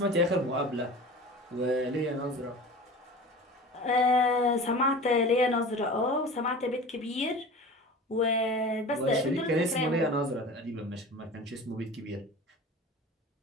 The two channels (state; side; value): normal; both; correlation 0.36